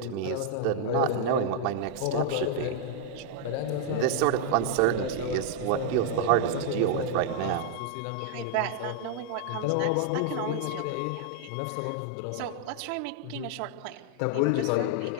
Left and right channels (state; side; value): different; both; correlation 0.00